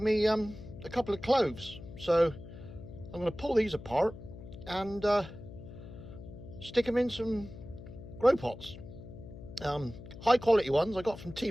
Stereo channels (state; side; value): noise; left; hum, 14 dB below the sound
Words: me a couple of cloves, so I'm going to pull these apart and stick them in some grow pots. High quality ones I got from